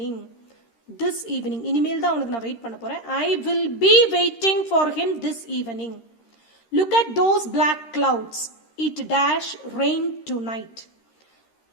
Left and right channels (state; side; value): late; right; 13 ms